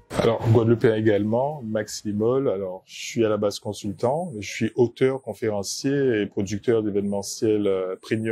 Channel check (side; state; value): both; identical; correlation 1.00